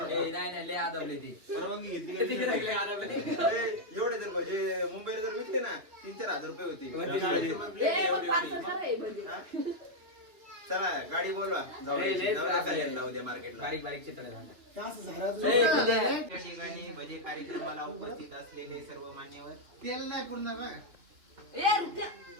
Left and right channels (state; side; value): late; left; 2.9 ms